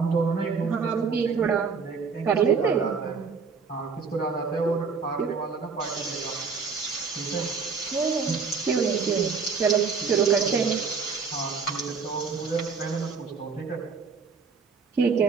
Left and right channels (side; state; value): left; quieter; 5.3 dB